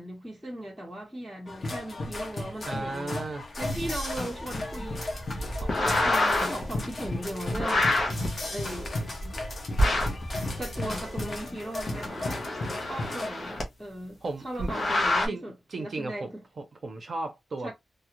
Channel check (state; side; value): normal; both; correlation 0.89